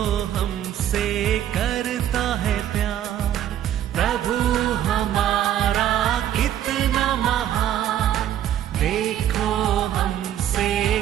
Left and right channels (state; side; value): quieter; left; 11.2 dB